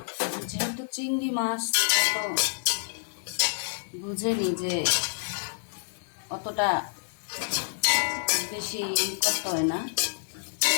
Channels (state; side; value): silent; right; digital silence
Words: যেহেতু চিংড়ি মাছ তো বুঝেনি যে অতটা বেশি করতে হয় না।